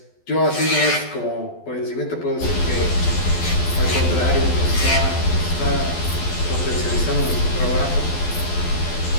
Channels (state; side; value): late; right; 12 ms